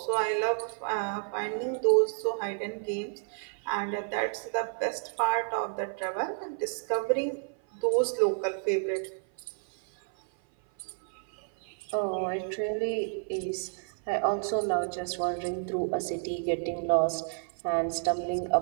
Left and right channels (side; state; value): left; silent; 56 dB below the other